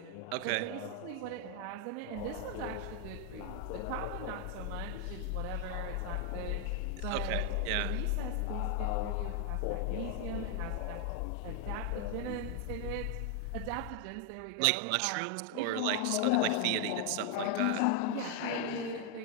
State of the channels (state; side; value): different; both; correlation 0.01